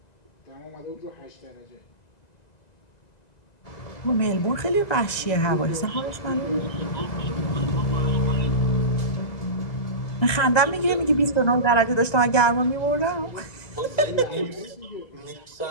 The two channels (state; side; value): late; right; 1.9 ms